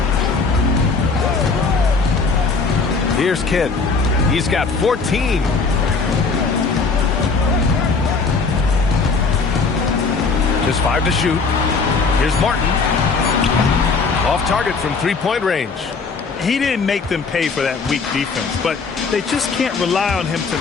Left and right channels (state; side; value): quieter; right; 4.6 dB